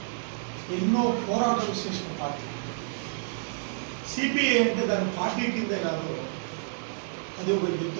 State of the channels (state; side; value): silent; left; 59 dB below the other